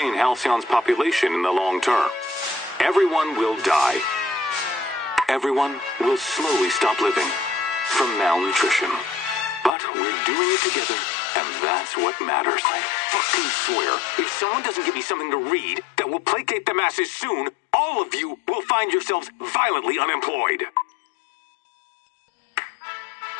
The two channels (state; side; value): drops out; right; at 9.7 s